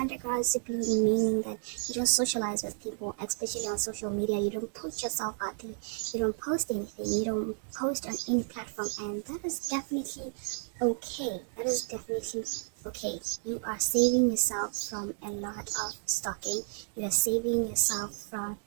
simply meaning that you don't socialize with people, especially on social media. You don't put yourself out there. You don't post anything. You don't post on any platform, and that is definitely okay. That is definitely okay. You are saving yourself from a lot of stalking. You are saving yourself from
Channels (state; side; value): silent; left; digital silence